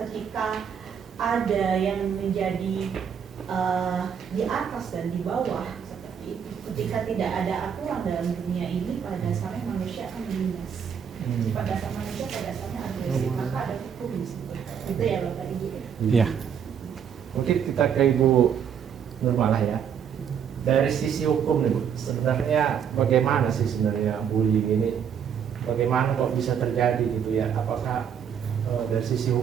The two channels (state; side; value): quieter; left; 7.8 dB